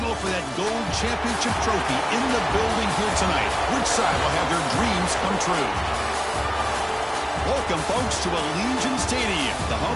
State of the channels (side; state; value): both; identical; correlation 1.00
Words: for that gold championship trophy in the building here tonight. Which side will have their dreams come true? Welcome, folks, to Allegiant Stadium, the